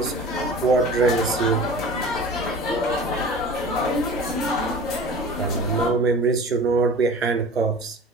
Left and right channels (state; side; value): normal; both; correlation 0.38